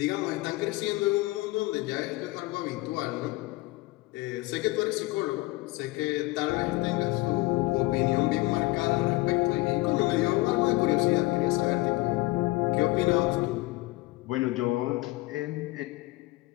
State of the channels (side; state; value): right; quieter; 20.7 dB